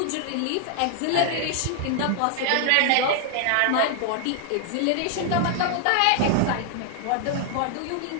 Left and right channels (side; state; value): both; different; correlation 0.00